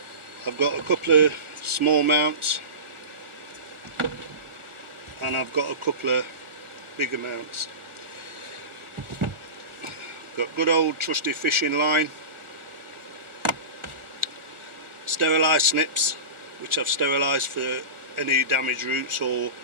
I've got a couple of small mounts and I've got a couple of bigger mounts. Got good old trusty fishing line, sterilised snips which I've sterilised for any damaged roots or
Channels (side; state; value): left; late; 1.4 ms